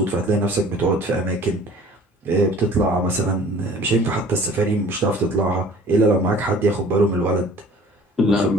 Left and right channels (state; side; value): normal; both; correlation 0.49